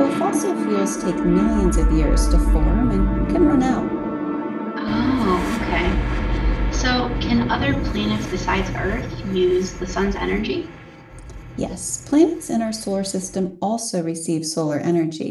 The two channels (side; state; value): both; identical; correlation 1.00